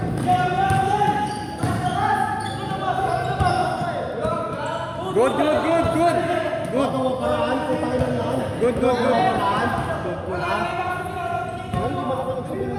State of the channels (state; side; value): identical; both; correlation 1.00